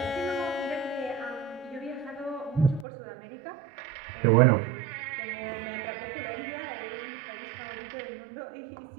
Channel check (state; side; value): drops out; left; at 2.9 s